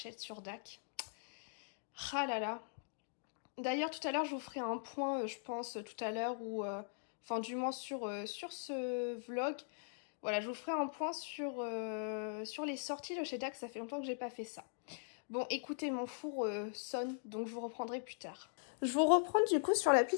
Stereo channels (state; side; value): silent; right; digital silence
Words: sur DAC. Ah là là. D'ailleurs tout à l'heure je vous ferai un point, je pense, tout à l'heure, ou enfin du moins sur ce vlog. Voilà, je vous ferai un point sur les sorties de chez DAC, ça fait longtemps que j'ai pas fait ça. Bon, écoutez, mon four sonne, donc je vous reprendrai plus tard. Je vous reprends du coup sur